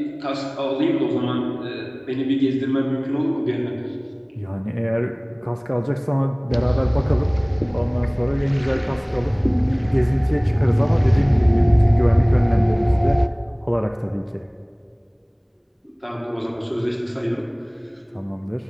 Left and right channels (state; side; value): identical; both; correlation 1.00